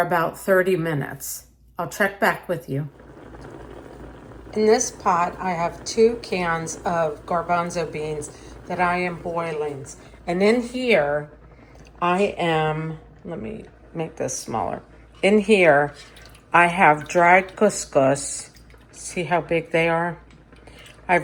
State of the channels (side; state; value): both; identical; correlation 1.00